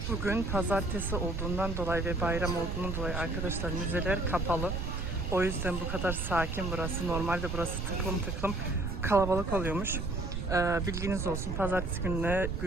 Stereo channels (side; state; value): right; noise; rumble, 3 dB below the sound